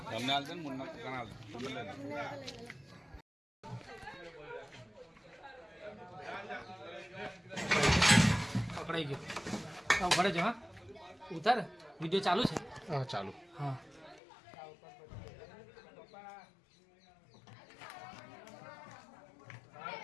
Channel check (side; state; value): right; drops out; at 14.2 s